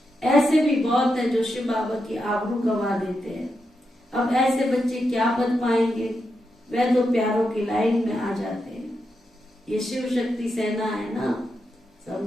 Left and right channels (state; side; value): normal; both; correlation 0.86